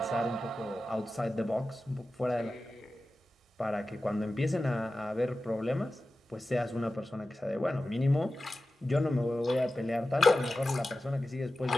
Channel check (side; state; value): both; normal; correlation 0.94